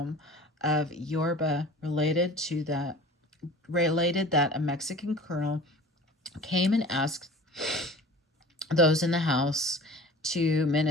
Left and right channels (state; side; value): normal; both; correlation 0.41